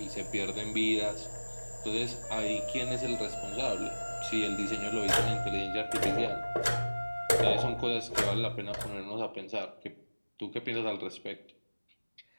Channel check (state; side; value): inverted; both; correlation -1.00